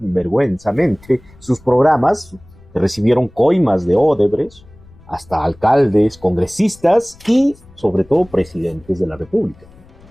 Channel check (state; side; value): noise; left; rumble, 25 dB below the sound